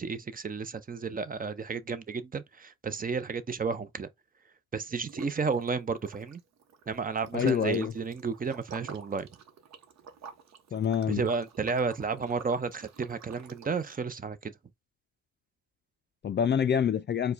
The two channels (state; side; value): normal; both; correlation 0.37